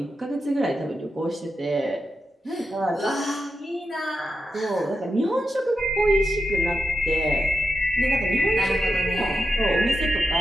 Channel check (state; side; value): normal; both; correlation 0.87